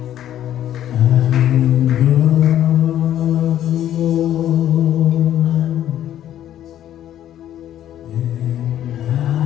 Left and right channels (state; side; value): quieter; right; 11.5 dB